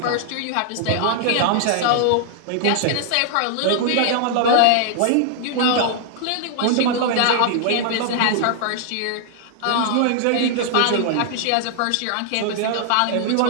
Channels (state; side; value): different; both; correlation 0.00